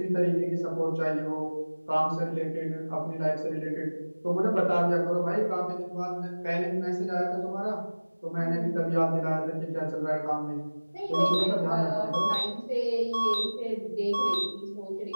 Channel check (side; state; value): both; inverted; correlation -1.00